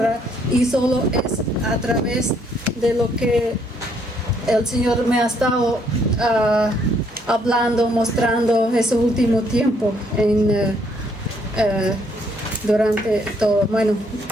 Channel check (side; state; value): both; normal; correlation 0.69